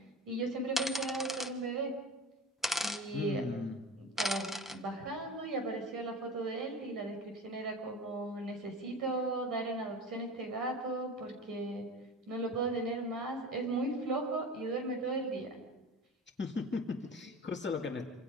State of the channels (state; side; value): normal; both; correlation 0.34